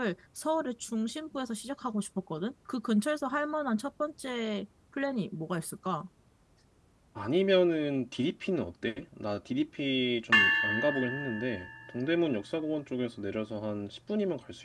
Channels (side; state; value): both; identical; correlation 1.00